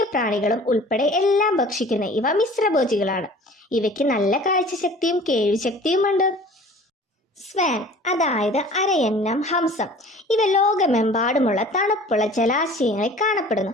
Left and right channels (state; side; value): normal; both; correlation 0.46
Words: പ്രാണികളും ഉൾപ്പെടെ എല്ലാം ഭക്ഷിക്കുന്ന ഇവ മിശ്രഭോജികളാണ്. ഇവയ്ക്ക് നല്ല കാഴ്ചശക്തിയും കേൾവിശക്തിയുമുണ്ട്. സ്വാൻ അതായത് അരയന്നം, ഹംസം. ഇവ ലോകമെമ്പാടുമുള്ള തണുപ്പുള്ള ജലാശയങ്ങളിൽ കാണപ്പെടുന്നു.